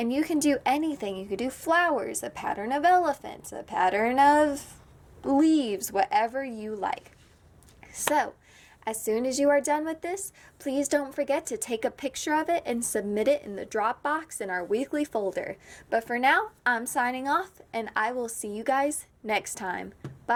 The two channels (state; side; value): identical; both; correlation 1.00